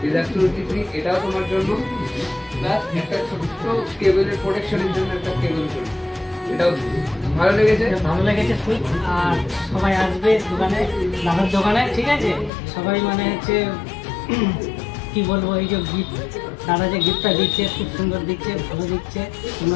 is absolutely free, এটাও তোমার জন্য। প্লাস একটা ছোট্ট কেবলের প্রোটেকশনের জন্য একটা কেবল ফ্রি, এটাও ভালো লেগেছে। ভালো লেগেছে খুব। আর সবাই আসবে দোকানে, দাদার দোকানে, ঠিক আছে? সবাই মানে হচ্ছে কি বলবো, এই যে গিফট, দাদা যে গিফটটা দিচ্ছে খুব সুন্দর দিচ্ছে, ভালো দিচ্ছে।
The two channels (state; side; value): drops out; right; at 12.5 s